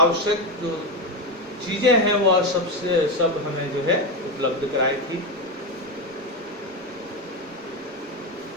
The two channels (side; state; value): both; normal; correlation 0.13